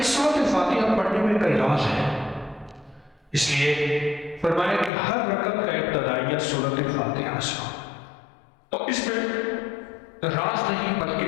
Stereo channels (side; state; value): right; drops out; at 4.9 s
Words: سورۃ فاتحہ پڑھنے میں کئی راز ہے۔ اس لیے فرمایا کہ ہر رکعت کا ابتدائیہ سورۃ فاتحہ سے ہو۔ اور اس میں راز نہیں بلکہ